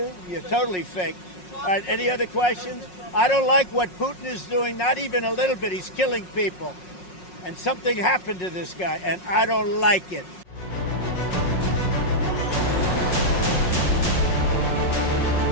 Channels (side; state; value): right; late; 5.5 ms